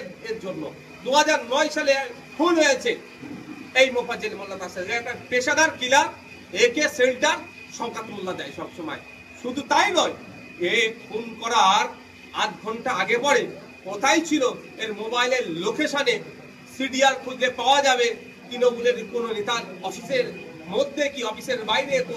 এর জন্য। 2009 সালে খুন হয়েছে এই মোফাজ্জেল মোল্লা তার সাথে একটা পেশাদার কিলার একে সেল্টার শওকত মোল্লা দেয় সবসময়। শুধু তাই নয়, এ খুন করার আধ ঘন্টা আগে পরে কোথায় ছিল এর মোবাইলের লোকেশনে সিডিআর খুঁজলে পাওয়া যাবে। তৃণমূলের কোনো নেতার অফিসের মধ্যে কি অফিসের বাইরে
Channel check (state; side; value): identical; both; correlation 1.00